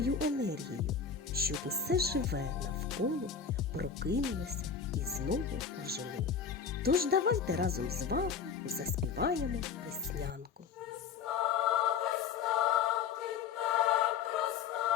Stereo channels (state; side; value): quieter; right; 6.6 dB